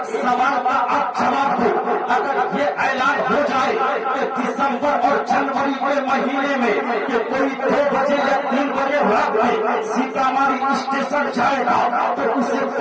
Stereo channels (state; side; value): identical; both; correlation 1.00